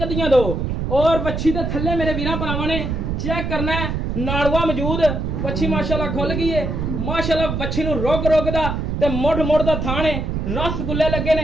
दियां 2। और वच्छी दे थल्ले मेरे वीरां भरावां ने चेक करना है, नाड़ुआ मौजूद। वच्छी माशाअल्लाह खुल गई है। माशाअल्लाह वच्छी नूं रोग रोग दा ते मुड़ मुड़ दा थाने, रसगुल्ले लगे ने।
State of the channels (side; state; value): right; noise; rumble, 2 dB below the sound